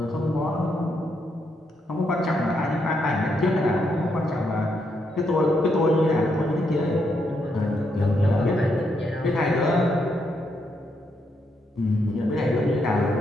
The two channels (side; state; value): both; normal; correlation 0.78